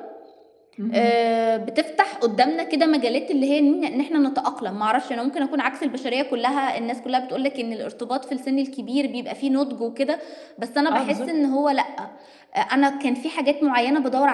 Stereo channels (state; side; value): identical; both; correlation 1.00